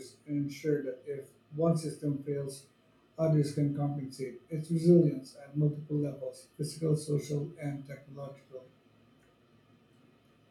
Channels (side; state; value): both; identical; correlation 1.00